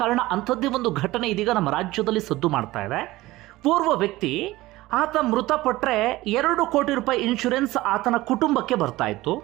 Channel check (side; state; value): left; quieter; 18.3 dB